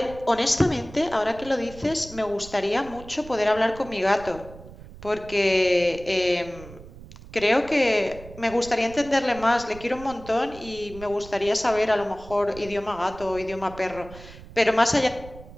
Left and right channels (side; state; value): right; noise; rumble, 17 dB below the sound